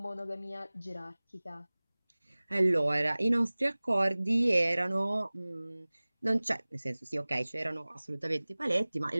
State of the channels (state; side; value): inverted; both; correlation -1.00